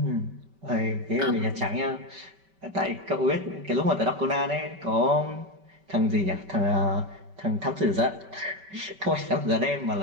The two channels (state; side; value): late; left; 5.2 ms